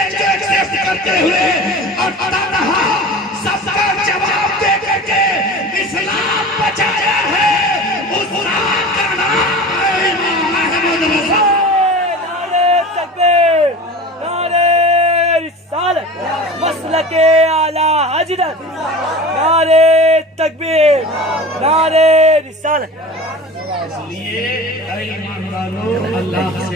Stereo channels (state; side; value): normal; both; correlation 0.36